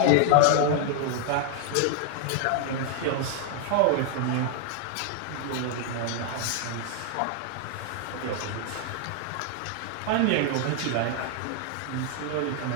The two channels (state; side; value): different; both; correlation 0.00